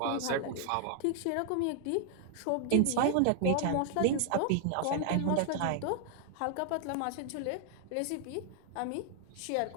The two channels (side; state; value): both; different; correlation 0.00